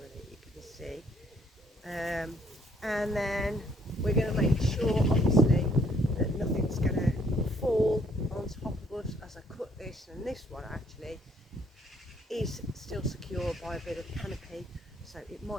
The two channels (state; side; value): normal; both; correlation 0.65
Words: you can see, and then we're going to make sure obviously that nothing's going to fall on top of us as I cut this, and this one actually is still secure by a bit of canopy, so it